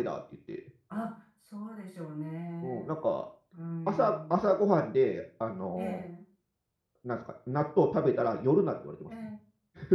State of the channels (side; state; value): both; identical; correlation 1.00